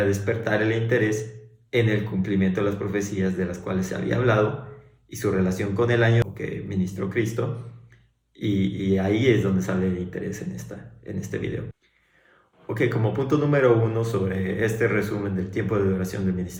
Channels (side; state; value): both; identical; correlation 1.00